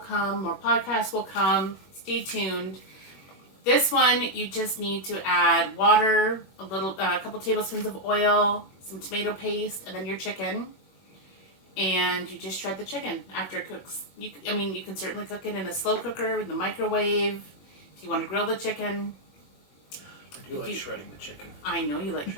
More podcasts will come. Stay tuned. This one, you just need to add water, a couple tablespoons of oil, some tomato paste, and then your chicken. And you just shred the chicken after it cooks. You can certainly cook it in a slow cooker, in the microwave, if you want to grill the chicken. I do like shredding the chicken. I know you like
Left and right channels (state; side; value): late; right; 21 ms